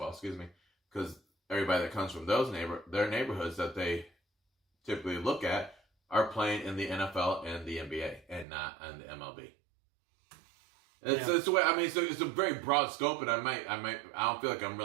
excuse me, because everybody that comes from their neighborhoods that they typically look at are playing in the NFL and the NBA and not in the MLB. It's the way. I mean, it's a very broad scope, and I don't feel like I'm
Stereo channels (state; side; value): drops out; left; at 8.5 s